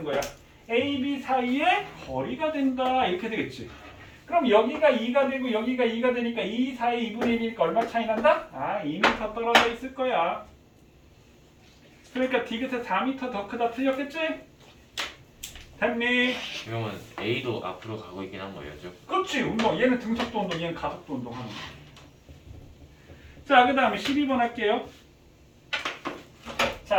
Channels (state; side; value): identical; both; correlation 1.00